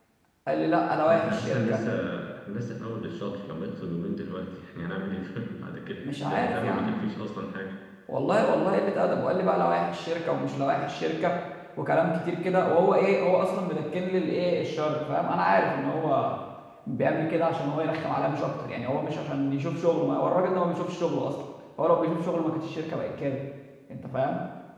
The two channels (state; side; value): identical; both; correlation 1.00